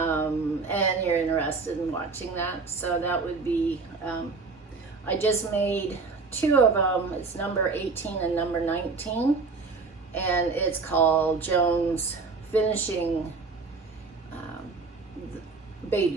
you're interested in watching that. So that would be, I just made 2 of them. It's number 18 and number 19. And it's called Joan's Finishing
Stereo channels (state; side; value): quieter; left; 4.3 dB